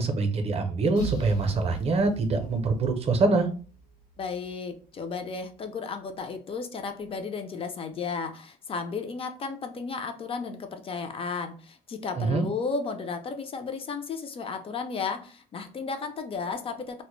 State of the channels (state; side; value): normal; both; correlation 0.56